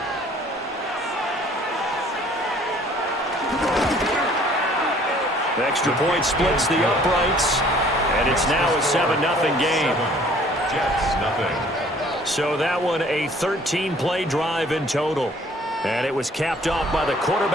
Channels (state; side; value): normal; both; correlation 0.56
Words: The extra point splits the uprights, and it's now a 7-0 game. Jets, 0. So that one a 13-play drive in total. And it was capped off by the